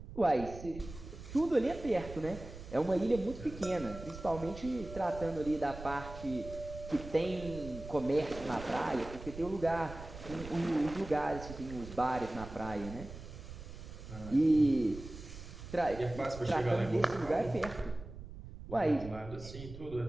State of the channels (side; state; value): right; noise; rumble, 13 dB below the sound